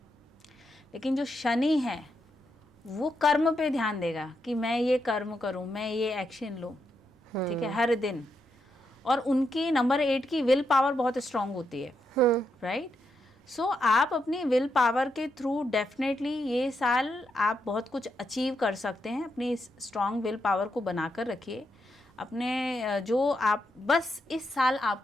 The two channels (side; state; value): both; normal; correlation 0.82